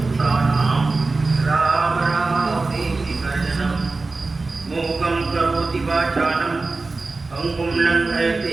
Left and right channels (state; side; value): quieter; left; 3.6 dB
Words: राम रामेति अर्जनं मूकं करोति वाचालं पङ्गुं